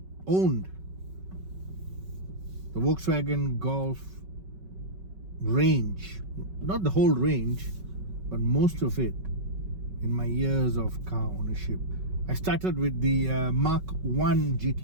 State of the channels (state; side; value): late; left; 5.3 ms